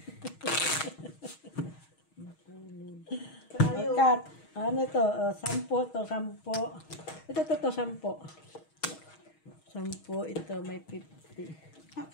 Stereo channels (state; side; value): late; right; 6.3 ms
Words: Kat, ano ito? 10 to, 10. Ito, 10. 10, ito may 50.